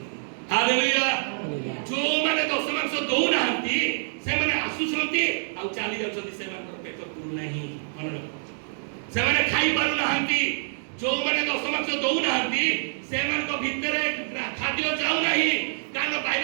ହାଲେଲୁୟା जो माने दश मास दौनाहांती से माने आसुଛନ୍ତି ଆଉ ଚାଲି ଯାଉଛନ୍ତି ସେମାନଙ୍କର ପେଟ ପୁରୁ ନାହିଁ ମନେ ରଖ ସେମାନେ ଖାଇ ପାରୁ ନାହାନ୍ତି जो माने दश मास ଦଉନାହାନ୍ତି ସେମାନଙ୍କ ଭିତରେ ଖାଦ୍ୟ ଯାଉ ନାହିଁ କାରଣ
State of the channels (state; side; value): silent; left; digital silence